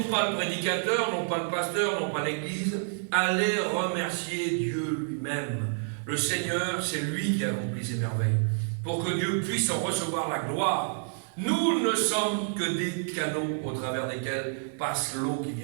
pas le prédicateur, non pas le pasteur, non pas l'église, allez remercier Dieu lui-même. Le Seigneur, c'est lui qui accomplit ces merveilles, pour que Dieu puisse en recevoir la gloire. Nous ne sommes que des canaux au travers desquels passe l'eau qui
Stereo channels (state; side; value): silent; left; digital silence